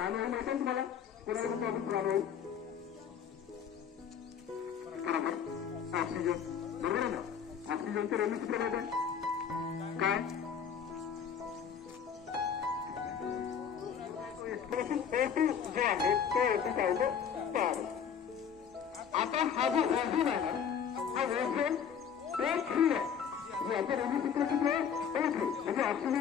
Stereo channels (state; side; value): quieter; right; 7.6 dB